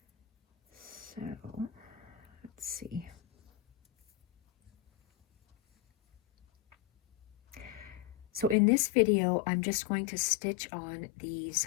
So let's see. So in this video, I'm just going to stitch on these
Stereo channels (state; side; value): drops out; right; at 8.6 s